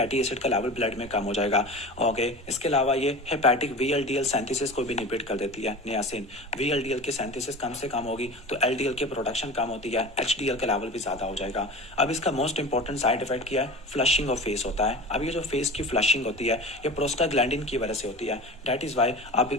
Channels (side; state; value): both; normal; correlation 0.33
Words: एसिड का लेवल ब्लड में कम हो जाएगा। ओके, इसके अलावा ये हेपेटिक VLDL सिंथेसिस को भी इनहिबिट कर देती है नियासिन। VLDL की सिंथेसिस कम से कम होगी तो LDL की प्रोडक्शन कम होती है, HDL का लेवल भी ज़्यादा हो जाएगा। अब इसका मोस्ट इंपॉर्टेंट साइड इफेक्ट क्या है, फ्लशिंग ऑफ फेस होता है। अब ये जो फेस की फ्लशिंग होती है ये प्रोस्टाग्लैंडिन की वजह से होती है। दैट इज़ वाई आप